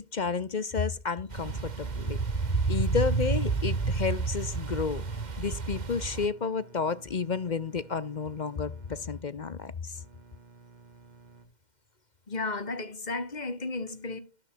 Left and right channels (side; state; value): right; late; 2.1 ms